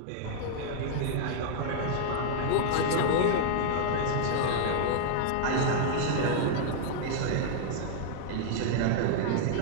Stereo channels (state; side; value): different; both; correlation -0.01